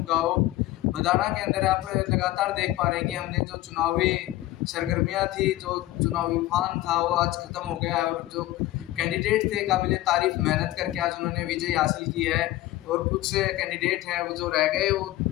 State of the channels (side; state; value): right; quieter; 16.2 dB